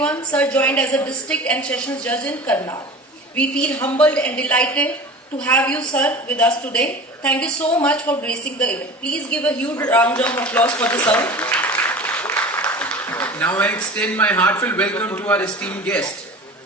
Sir joined as a District and Sessions Judge in Karnal. We feel humbled and delighted to have you, sir, with us today. Thank you so much for gracing the event. Please give a huge round of applause for the sir. Now I extend my heartfelt welcome to our esteemed guest,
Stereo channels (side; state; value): both; normal; correlation 0.37